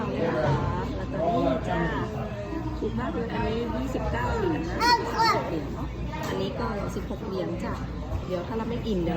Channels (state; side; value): identical; both; correlation 1.00